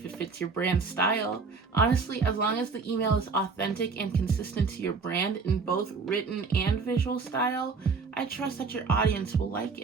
it fits your brand style. Honestly, as long as the email is authentic and consistent to your brand in both written and visual style, I trust that your audience will like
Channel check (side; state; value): left; quieter; 4.8 dB